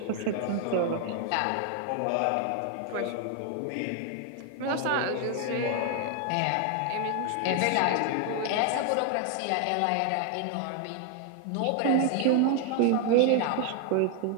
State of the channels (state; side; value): different; both; correlation 0.00